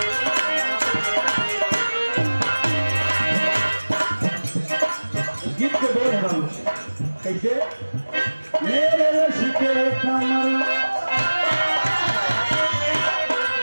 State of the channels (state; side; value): inverted; both; correlation -1.00